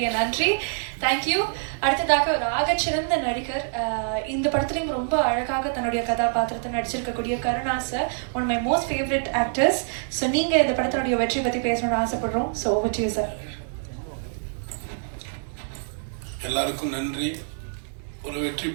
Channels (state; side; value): silent; left; digital silence